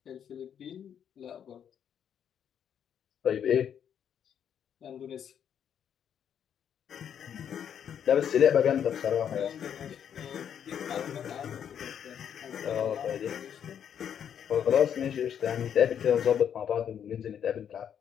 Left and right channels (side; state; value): right; quieter; 8.7 dB